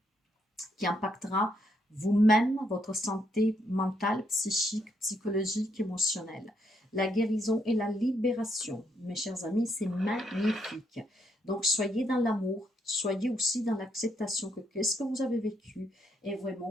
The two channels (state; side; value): normal; both; correlation 0.75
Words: qui impactera vous-même, votre santé mentale, psychique, psychologique, émotionnelle. La guérison et la libération, mes chers amis, c'est magnifique. Donc, soyez dans l'amour, soyez aussi dans l'acceptation que qu'est-ce que vous avez vécu est